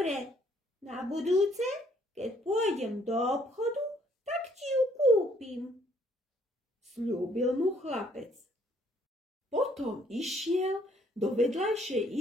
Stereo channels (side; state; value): both; normal; correlation 0.65